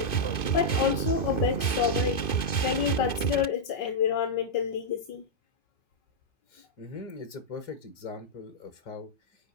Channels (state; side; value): late; right; 2.5 ms